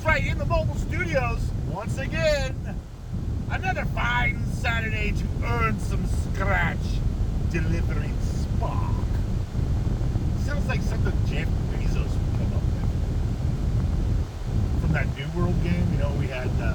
right, in the mobile studios, once again, another fine Saturday to earn some scratch, delivering spark. Sounds like something Jeff Bezos would come up with. From that New World game, you know, we had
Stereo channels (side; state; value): both; identical; correlation 1.00